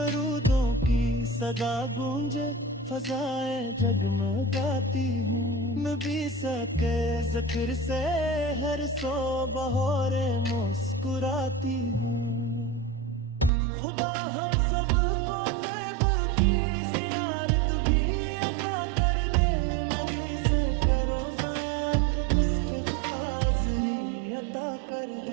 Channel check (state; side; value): drops out; left; at 13.5 s